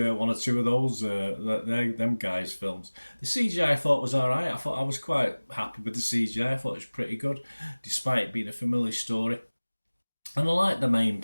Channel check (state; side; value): inverted; both; correlation -1.00